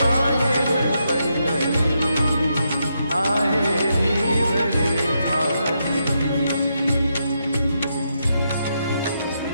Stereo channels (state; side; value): inverted; both; correlation -0.81